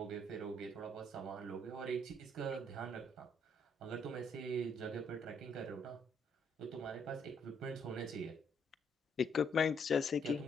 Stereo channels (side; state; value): both; normal; correlation 0.70